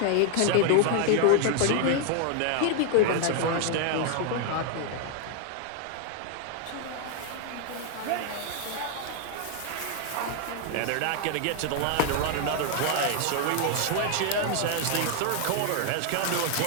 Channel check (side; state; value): both; different; correlation 0.00